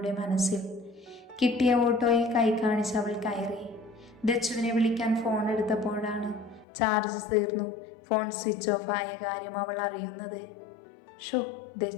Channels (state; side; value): drops out; right; at 6.7 s